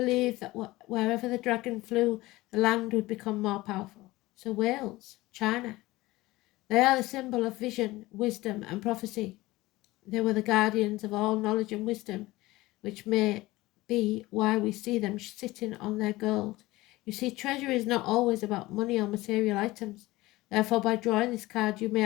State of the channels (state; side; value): quieter; right; 19.2 dB